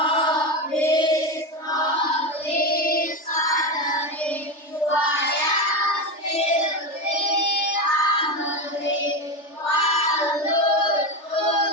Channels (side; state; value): right; late; 3.3 ms